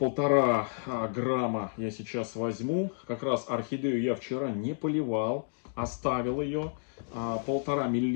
грамма я сейчас возьму. Как раз орхидею я вчера не поливал, оставил ее. 1,5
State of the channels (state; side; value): silent; right; digital silence